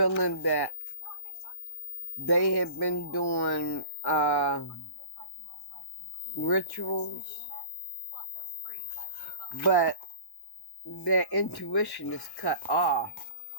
that they have been doing rituals, but their intuition is cut off.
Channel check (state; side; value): late; right; 1.1 ms